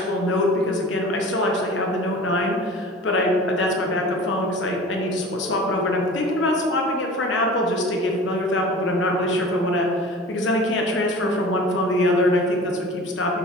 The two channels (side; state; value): both; normal; correlation 0.40